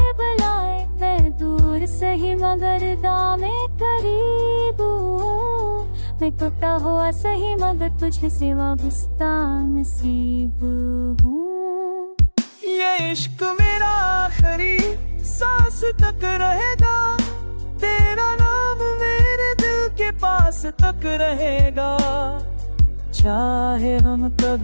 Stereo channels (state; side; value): inverted; both; correlation -1.00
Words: बुलाए। मैं दूर सही मगर दामे करीब हूँ, मैं टूटा हुआ सही मगर तुझे से वाबस्ता नसीब हूँ। ये इश्क मेरा आखिरी सांस तक रहेगा, तेरा नाम मेरे दिल के पास तक रहेगा। चाहे हम